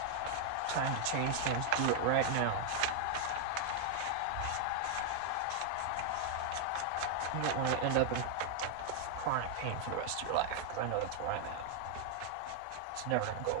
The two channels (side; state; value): both; different; correlation 0.00